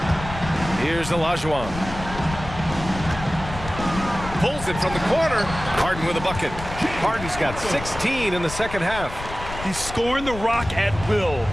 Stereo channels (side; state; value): left; noise; rumble, 10 dB below the sound